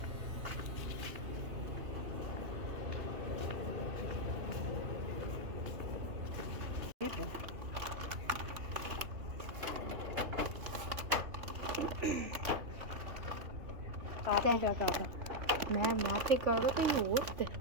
आपने क्या कहा था? मैं तो कर रहा कहीं और थे,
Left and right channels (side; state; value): left; late; 3.0 ms